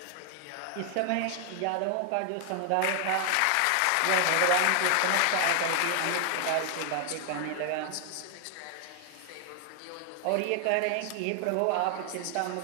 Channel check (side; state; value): both; different; correlation 0.00